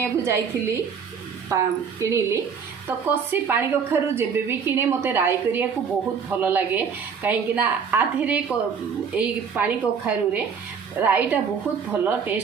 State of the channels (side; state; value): left; quieter; 6.4 dB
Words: को जाइथिली किनिली तो कसी पानी कखारु जेबे भी किने मते राई करिया को बहुत भलो लागे। काहेकि ना आधेरे एई पानी कखारु रे राईटा बहुत भलो